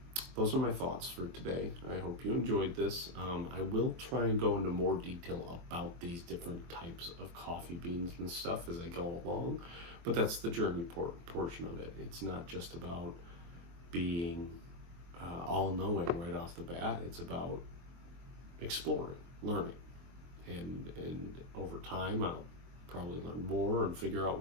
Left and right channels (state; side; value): late; left; 23 ms